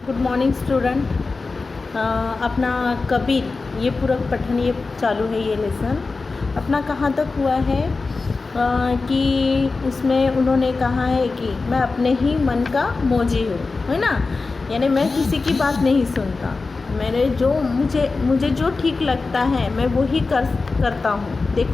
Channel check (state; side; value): quieter; right; 3.9 dB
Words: Good morning student. अपना कबीर ये पूरा पठन ये चालू है। ये लेसन अपना कहाँ तक हुआ है कि उसमें उन्होंने कहा है कि मैं अपने ही मन का मौजी हूँ, है ना। यानी मैं किसी की बात नहीं सुनता, मेरे जो मुझे जो ठीक लगता है मैं वही करता हूँ। देख